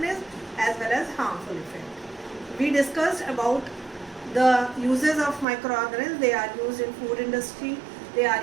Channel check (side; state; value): left; drops out; at 5.5 s